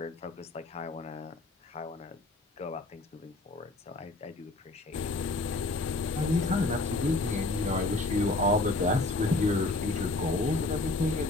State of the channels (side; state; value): right; quieter; 3.1 dB